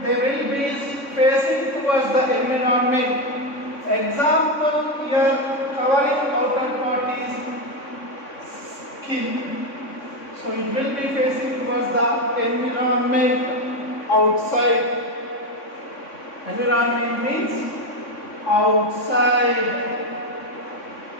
They will be facing towards the environment. Example here, covering outer part is skin. So it will be facing towards the environment outside. Environment means outside.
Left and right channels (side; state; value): right; late; 3.6 ms